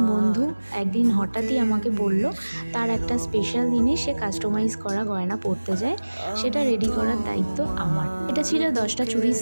বন্ধু একদিন হঠাৎই আমাকে বলল তার একটা স্পেশাল দিনে সে কাস্টমাইজ করা গয়না পরতে যায়, সেটা রেডি করার দায়িত্ব আমার। এটা ছিল 10টা চুড়ির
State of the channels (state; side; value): inverted; both; correlation -1.00